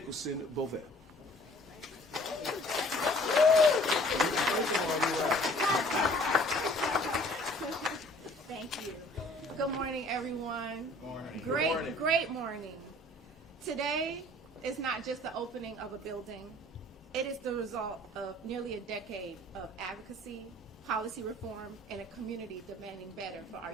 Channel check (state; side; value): normal; both; correlation 0.53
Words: Bovell. Thank you. Good morning, everyone. Morning. Great morning. Today is not just the opening of a building. It is the result of nearly a decade of advocacy, policy reform, and a community demanding better for our